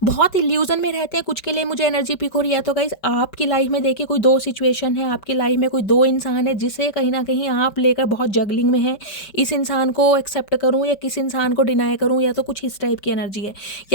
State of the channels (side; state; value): right; late; 5.2 ms